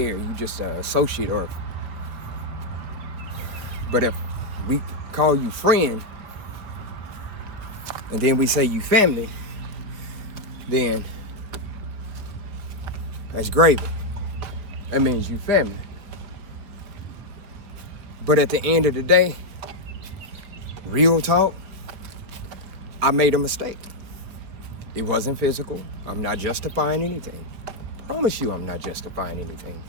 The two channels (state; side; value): late; left; 4.8 ms